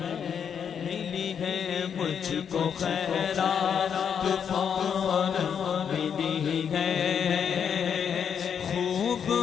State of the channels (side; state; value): right; quieter; 7.6 dB